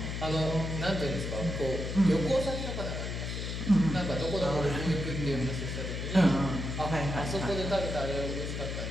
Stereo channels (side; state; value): left; noise; hum, 4 dB below the sound